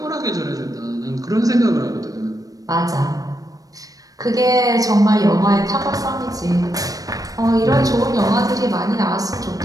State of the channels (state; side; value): late; left; 0.18 ms